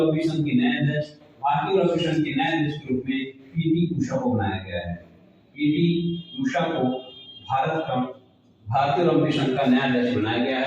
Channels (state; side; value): identical; both; correlation 1.00